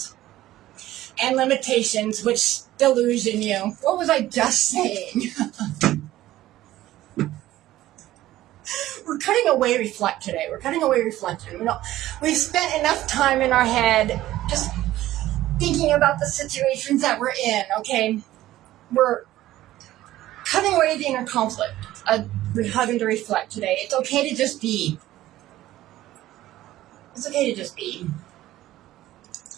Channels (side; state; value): left; quieter; 15.0 dB